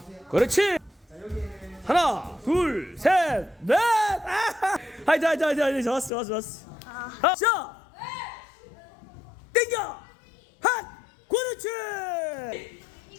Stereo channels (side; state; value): right; drops out; at 6.1 s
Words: 그렇지. 하나, 둘, 셋, 넷. 하이자. 좋았어. 자, 땡겨. 핫. 그렇지.